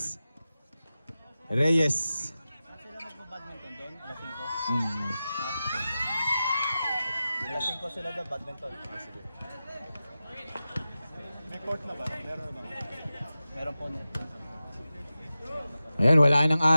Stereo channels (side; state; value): both; inverted; correlation -0.94